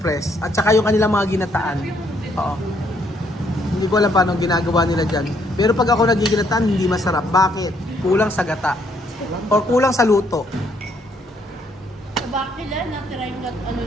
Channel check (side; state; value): both; normal; correlation 0.70